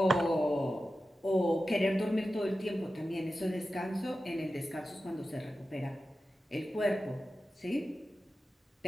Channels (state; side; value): normal; both; correlation 0.93